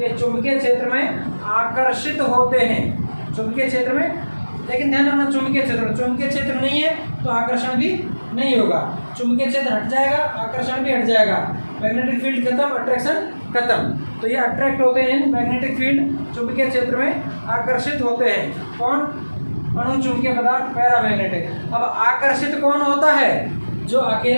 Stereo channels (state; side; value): inverted; both; correlation -1.00